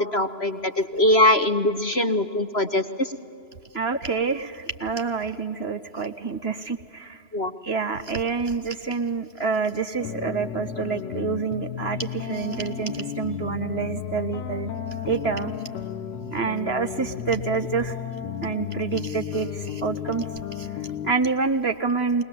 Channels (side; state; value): right; late; 3.0 ms